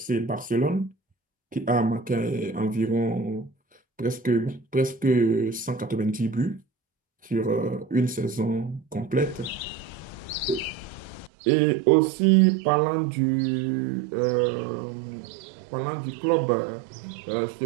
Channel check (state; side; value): drops out; left; at 11.3 s